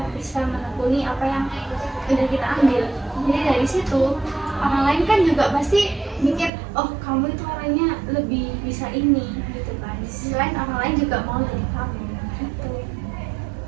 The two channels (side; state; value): left; drops out; at 6.5 s